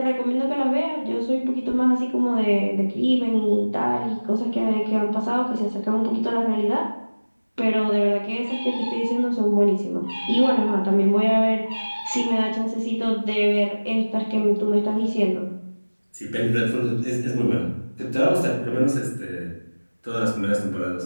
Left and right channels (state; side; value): inverted; both; correlation -1.00